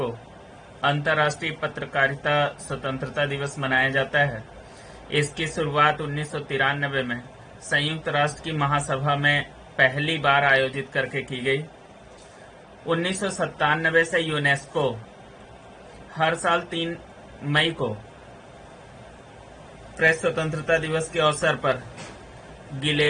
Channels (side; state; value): both; identical; correlation 1.00